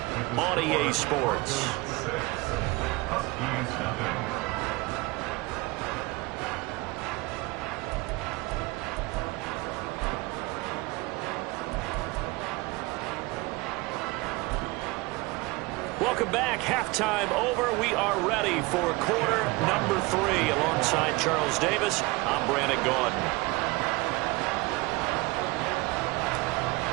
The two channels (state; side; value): quieter; left; 23.4 dB